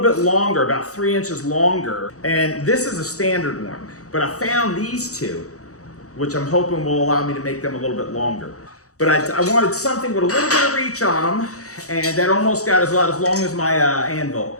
bit longer, about 3 inches longer. And this is a standard one, but I found these two, which I'm hoping will allow me to make them a little bit longer. But I wanted something with a little bit of reach on them, and that almost got as long as my anvil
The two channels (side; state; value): right; late; 0.65 ms